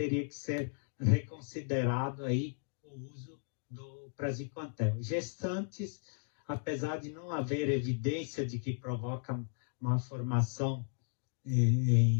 que ser reconsiderado aí o uso do praziquantel. Gestantes, apesar de não haver evidência de que provoca uma formação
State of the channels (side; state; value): right; silent; digital silence